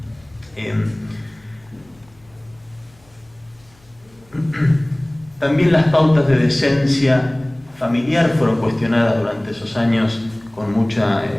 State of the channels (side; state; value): left; noise; hum, 30 dB below the sound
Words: También las pautas de decencia familiar fueron cuestionadas durante esos años con mucha